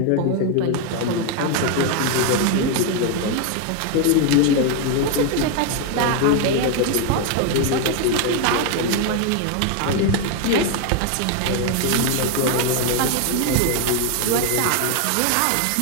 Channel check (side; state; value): both; different; correlation 0.01